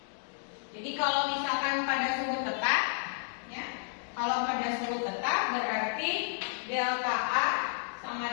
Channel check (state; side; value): silent; right; digital silence